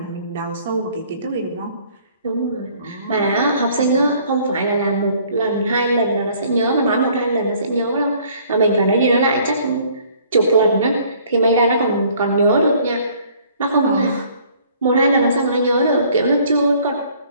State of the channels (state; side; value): inverted; both; correlation -0.58